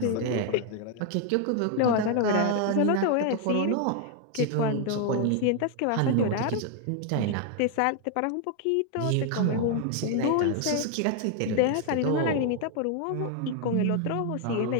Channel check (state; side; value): different; both; correlation 0.00